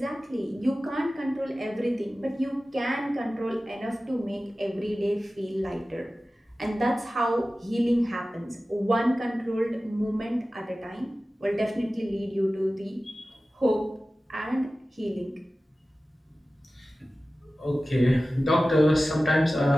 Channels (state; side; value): normal; both; correlation 0.96